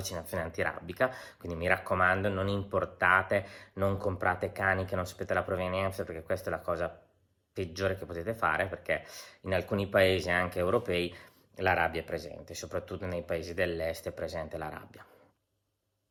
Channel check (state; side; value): identical; both; correlation 1.00